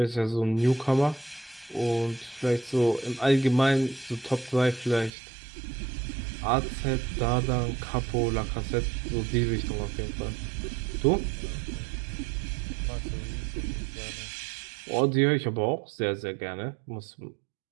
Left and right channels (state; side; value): drops out; left; at 5.1 s